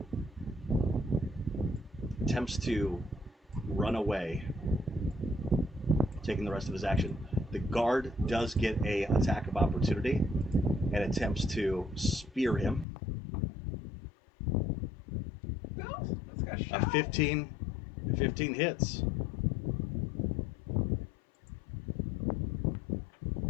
attempts to run away, taking the rest of his action. The guard does get a attack of opportunity and attempts to spear him. No, let's go A shot. 15 hits.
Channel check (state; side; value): drops out; right; at 12.9 s